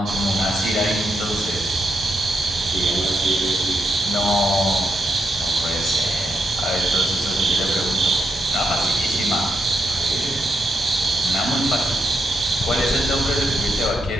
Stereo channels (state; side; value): normal; both; correlation 0.82